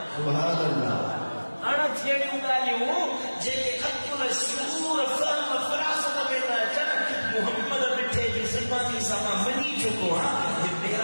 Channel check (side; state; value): both; inverted; correlation -1.00